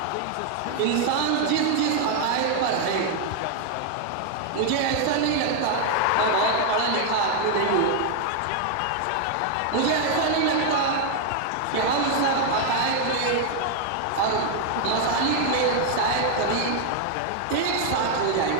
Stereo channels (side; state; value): both; different; correlation 0.00